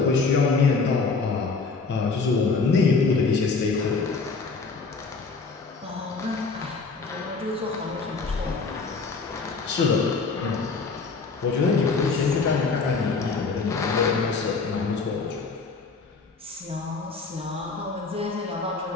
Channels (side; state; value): right; quieter; 4.4 dB